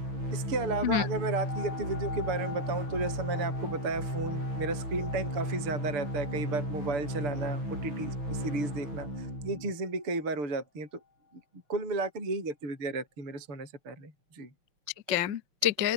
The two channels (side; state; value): left; late; 6.8 ms